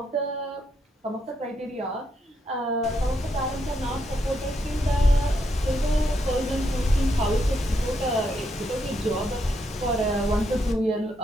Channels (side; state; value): both; normal; correlation 0.79